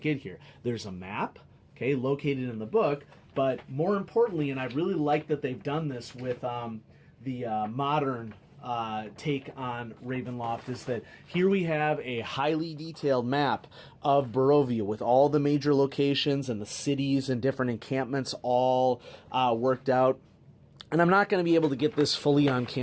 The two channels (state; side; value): identical; both; correlation 1.00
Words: here? There's a map, okay, located in the book, but more importantly, and I really like that they've done this with the modern take on Ravenloft, is that here we have a highly detailed map of Barovia with all the major locations and the cities and different encampments all worked out. And I'm not going to be able to get this fully on